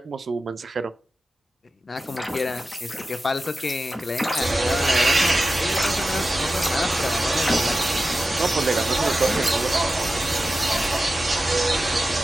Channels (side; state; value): both; normal; correlation 0.93